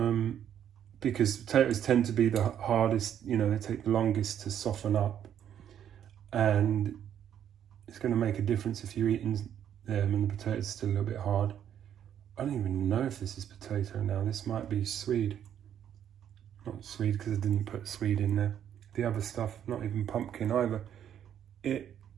Because potatoes tend to be the hardest, you know, they take the longest to soften up. And it's going to make a difference if you're eating them and the potato's still a little bit hard. I don't even know if this is potato now. This might be Swede. Not Swede because I didn't put Swede in there. The other stuff, not even pumpkin either.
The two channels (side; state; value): left; quieter; 9.7 dB